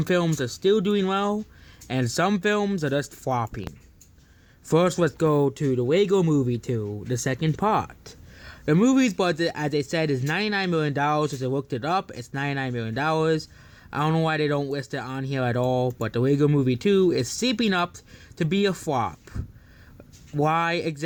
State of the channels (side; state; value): both; identical; correlation 1.00